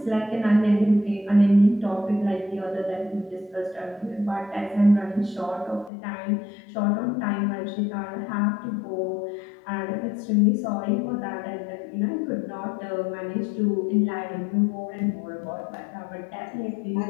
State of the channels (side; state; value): right; drops out; at 5.9 s